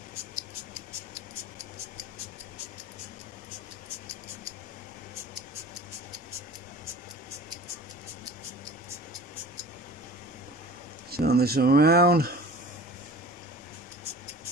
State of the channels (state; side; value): normal; both; correlation 0.41